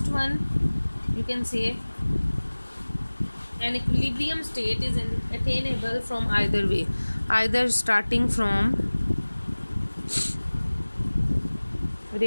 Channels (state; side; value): inverted; both; correlation -1.00